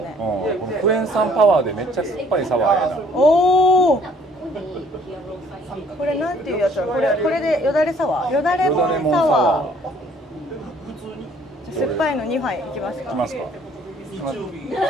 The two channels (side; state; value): both; normal; correlation 0.59